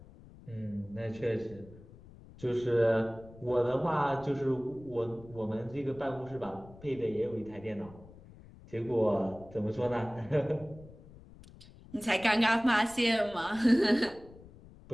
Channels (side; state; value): left; noise; rumble, 20 dB below the sound